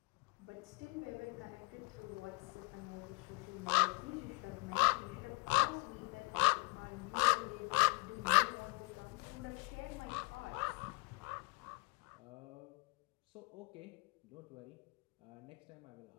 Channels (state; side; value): quieter; right; 29.7 dB